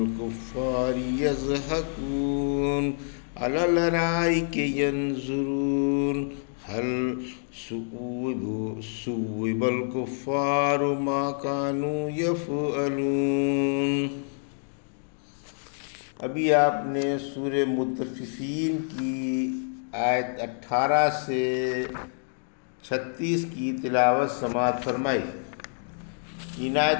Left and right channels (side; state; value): right; silent; digital silence